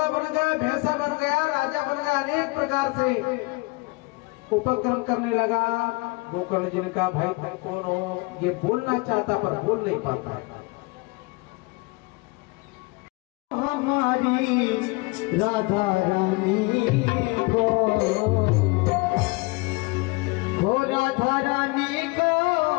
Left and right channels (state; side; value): quieter; right; 25.6 dB